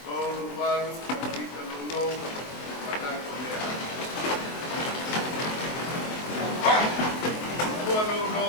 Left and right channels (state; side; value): late; right; 23 ms